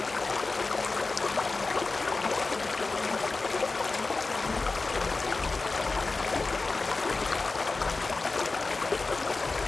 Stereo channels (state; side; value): quieter; right; 3.7 dB